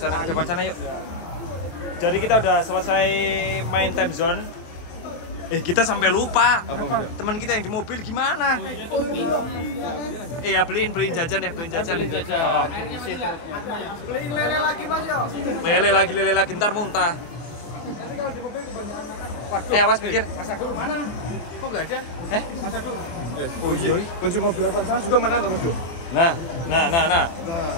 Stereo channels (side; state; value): right; late; 23 ms